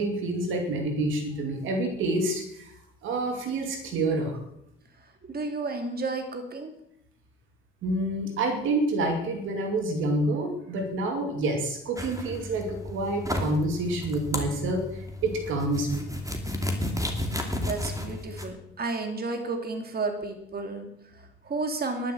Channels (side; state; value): both; normal; correlation 0.40